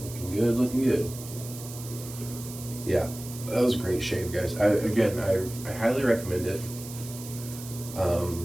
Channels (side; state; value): right; noise; hiss, 13 dB below the sound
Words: good, looking good. Yeah, that was a great shave, guys. I highly recommend it.